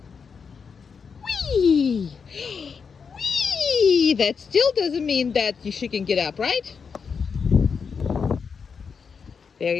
Whee! Whee! That still doesn't mean that she can get up, right?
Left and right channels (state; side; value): quieter; right; 5.9 dB